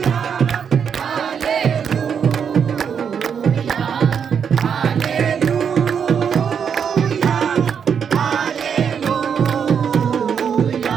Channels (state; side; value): quieter; left; 7.2 dB